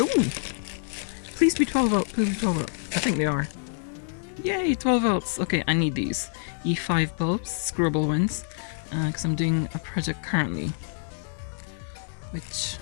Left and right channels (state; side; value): silent; right; digital silence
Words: Please be 12 volt, please be 12 volt. I think they are. Yay, 12 volts. Okay, I need these E5 bulbs, screwable ones, because I'm doing a project currently, which